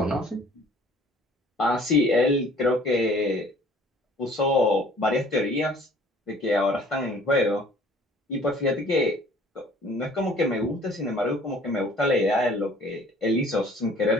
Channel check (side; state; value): both; normal; correlation 0.53